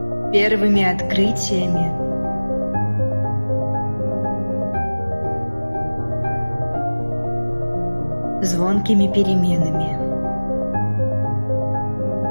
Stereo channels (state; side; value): inverted; both; correlation -1.00